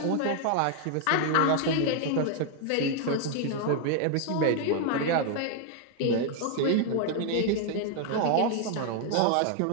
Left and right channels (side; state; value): both; different; correlation 0.00